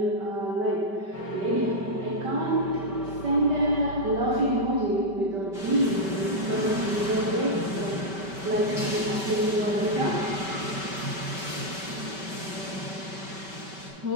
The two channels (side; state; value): left; late; 5.2 ms